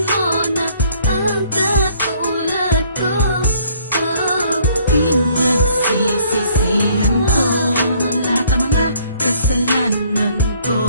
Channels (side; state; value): both; inverted; correlation -0.62